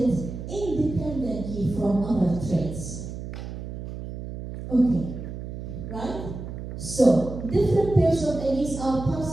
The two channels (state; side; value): noise; right; hum, 9 dB below the sound